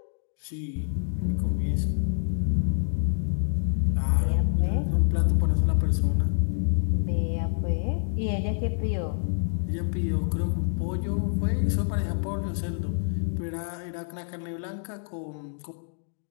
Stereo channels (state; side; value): silent; right; 60 dB below the other